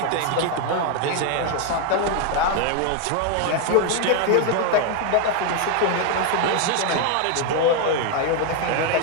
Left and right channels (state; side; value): different; both; correlation 0.01